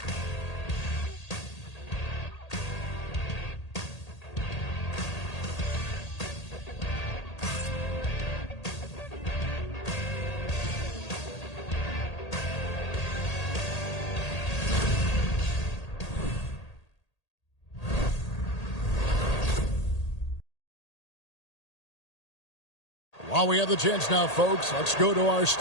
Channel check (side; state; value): right; late; 1.8 ms